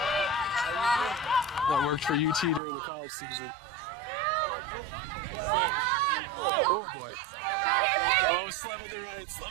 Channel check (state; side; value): drops out; left; at 2.6 s